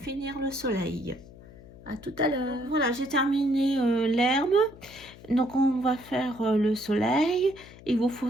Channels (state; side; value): noise; left; hum, 20 dB below the sound